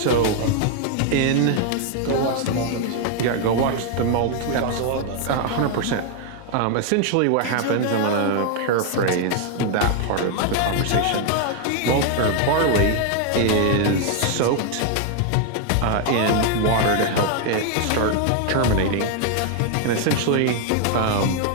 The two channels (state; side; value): different; both; correlation 0.00